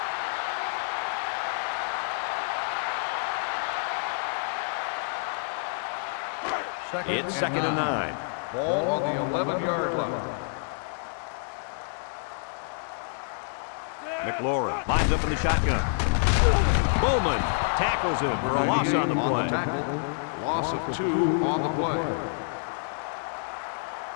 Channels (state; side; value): silent; right; 59 dB below the other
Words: It's second and 9. Ball on the 11-yard line. McLaurin lines up in the shotgun. Bowman tackles him for a loss on the play. Tackle. Loss of 2 on the play.